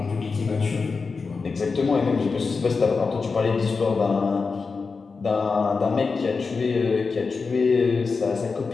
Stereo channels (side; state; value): right; quieter; 4.6 dB